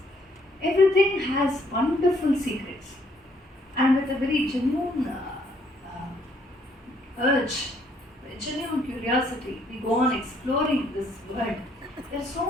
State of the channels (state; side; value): normal; both; correlation 0.67